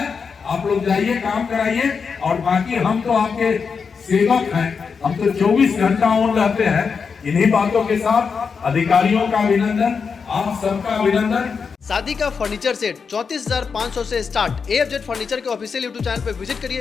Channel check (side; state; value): right; quieter; 5.7 dB